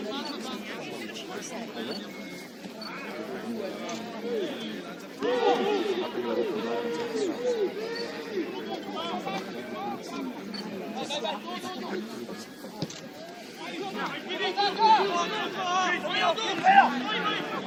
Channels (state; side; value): identical; both; correlation 1.00